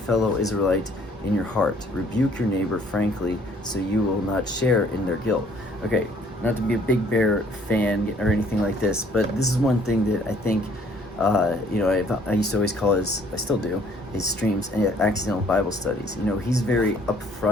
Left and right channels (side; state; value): both; normal; correlation 0.60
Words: Israelite in your heart. Rebuke your neighbor frankly, so you will not share in their guilt. Okay, not to be a Big Bear fan or anything like this, but this is one thing that I think, I used to always call I still do, his streams accidental Bible studies. He's very